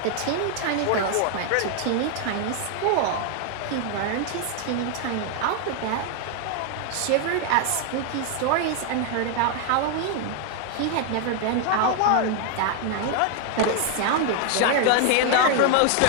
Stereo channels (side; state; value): both; different; correlation 0.00